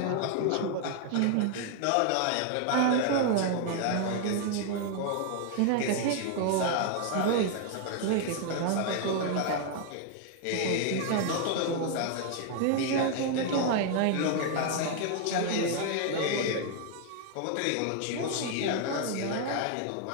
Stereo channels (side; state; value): both; different; correlation 0.00